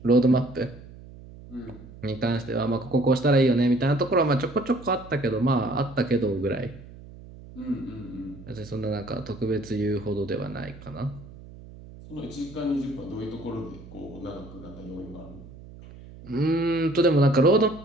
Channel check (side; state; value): right; noise; hum, 18 dB below the sound